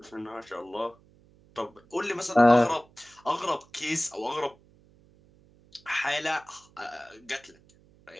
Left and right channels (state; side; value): noise; right; hum, 29 dB below the sound